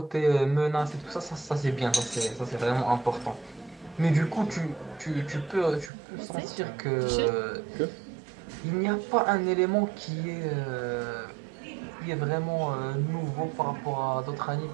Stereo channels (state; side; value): drops out; left; at 5.9 s